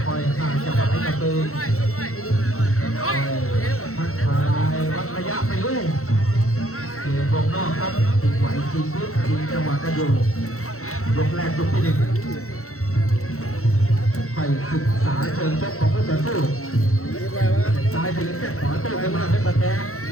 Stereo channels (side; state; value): right; late; 0.63 ms